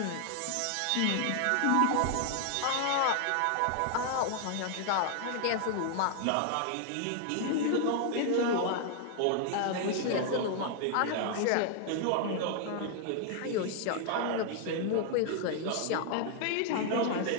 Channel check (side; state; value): both; different; correlation 0.00